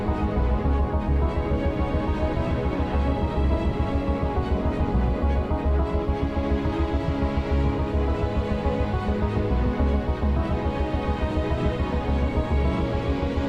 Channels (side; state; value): both; identical; correlation 1.00